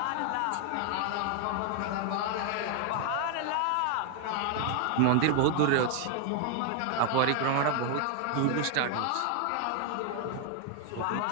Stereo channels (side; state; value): both; different; correlation 0.00